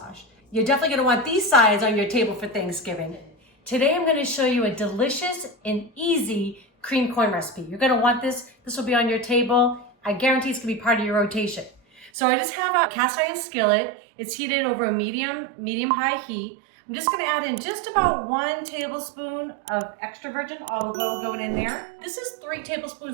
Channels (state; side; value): drops out; left; at 12.1 s